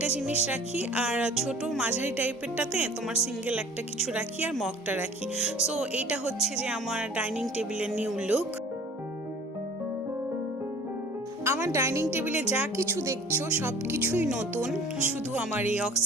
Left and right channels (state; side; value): normal; both; correlation 0.48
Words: জিনিস রাখি, আর ছোট মাঝারি টাইপেরটাতে তোমার সিঙ্গেল একটা কিছু রাখি, আর মগটা রাখি। সো এইটা হচ্ছে যে আমার ডাইনিং টেবিলের নিউ লুক। আমার ডাইনিং টেবিলে যা কিছু দেখছো সব কিছুই নতুন, শুধু আমার এই